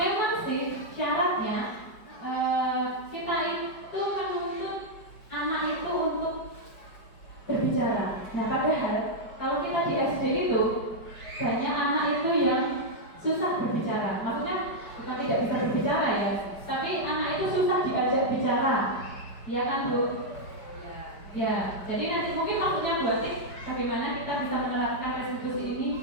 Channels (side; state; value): right; late; 5.0 ms